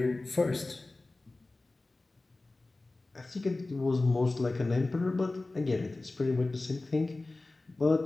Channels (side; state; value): right; quieter; 3.1 dB